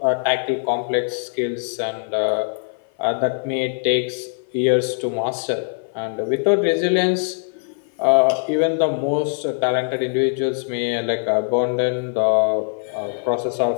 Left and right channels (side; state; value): right; silent; 56 dB below the other